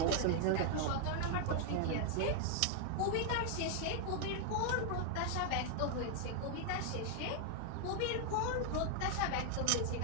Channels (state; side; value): different; both; correlation 0.00